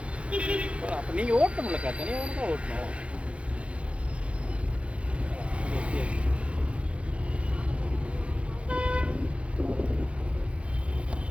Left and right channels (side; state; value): left; late; 0.061 ms